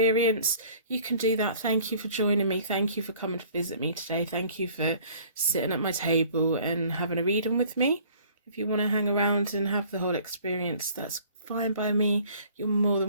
you can do that. Thank you for joining me. Thank you for coming to visit me today. Thank you for sitting at my table and having a reading with me. If you want to hang around and have the whole experience, that's fine by me. You're more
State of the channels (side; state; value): both; inverted; correlation -0.53